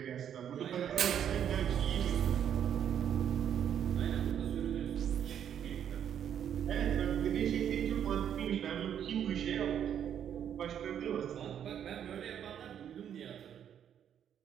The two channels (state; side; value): quieter; left; 9.2 dB